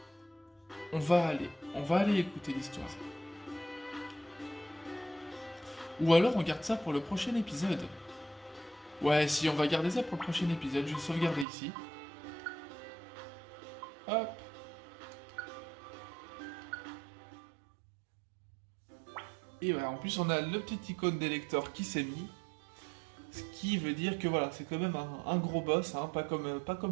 aller écouter l'histoire. Ou alors on garde ça pour le prochain épisode. Ouais, si, on va garder ça pour le prochain épisode. Je vais sauvegarder ici. Hop. Et voilà, en plus on a le petit icône des lecteurs qui s'est mis. Ce qui veut dire que voilà, c'est quand même un gros boss, hein, pas comme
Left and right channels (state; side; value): drops out; left; at 11.5 s